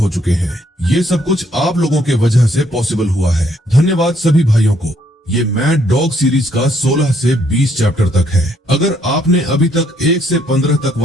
चुके हैं। ये सब कुछ आप लोगों के वजह से पॉसिबल हुआ है। धन्यवाद सभी भाइयों को। ये मैड डॉग सीरीज का 16 से 20 चैप्टर तक है। अगर आपने अभी तक 1 से 15 तक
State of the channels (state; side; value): normal; both; correlation 0.69